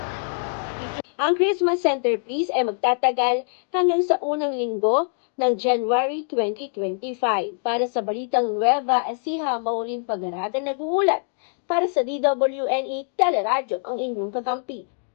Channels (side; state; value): right; silent; digital silence